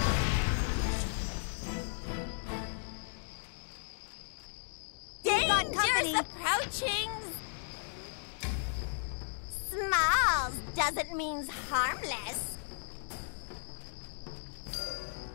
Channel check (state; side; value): silent; right; digital silence